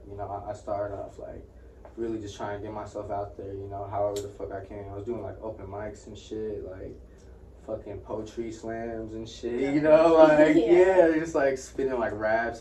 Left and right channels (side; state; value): both; identical; correlation 1.00